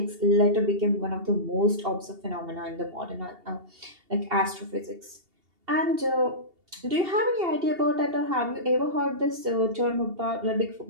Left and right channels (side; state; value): left; late; 2.8 ms